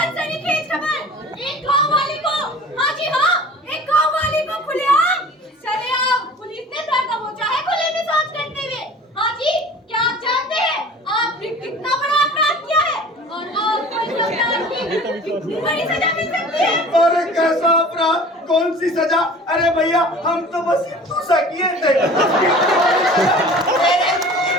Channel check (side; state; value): both; normal; correlation 0.43